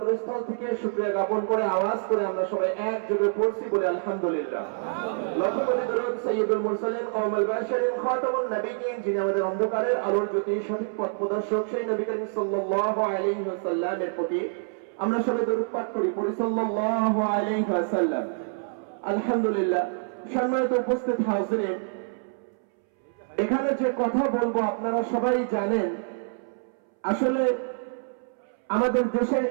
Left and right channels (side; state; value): left; silent; 60 dB below the other